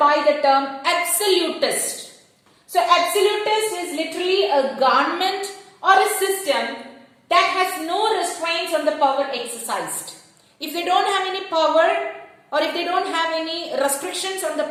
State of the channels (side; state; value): both; identical; correlation 1.00